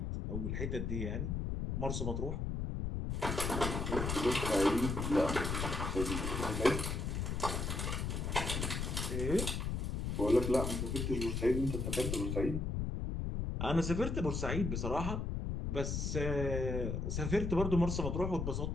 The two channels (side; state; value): left; noise; rumble, 1 dB below the sound